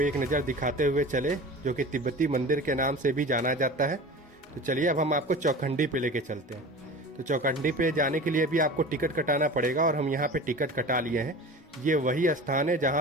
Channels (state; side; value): normal; both; correlation 0.36